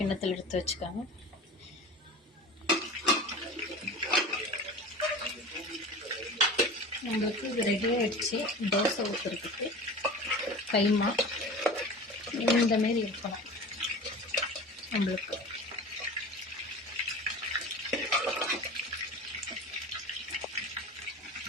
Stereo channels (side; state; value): both; normal; correlation 0.36